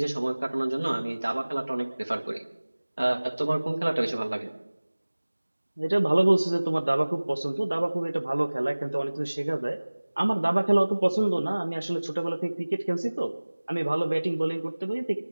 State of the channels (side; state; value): both; inverted; correlation -1.00